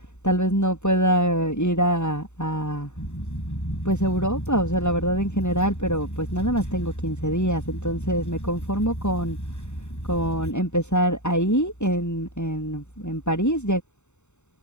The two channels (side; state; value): right; late; 0.83 ms